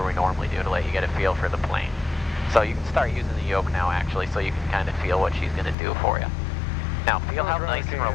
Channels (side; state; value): right; drops out; at 5.8 s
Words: we normally do to let you get a feel for the plane. So you can start using the yoke now actually, so you can kind of feel what she's going to do for you. Now, feel how nice and